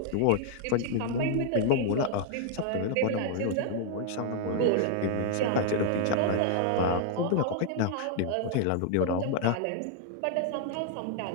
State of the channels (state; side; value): different; both; correlation 0.00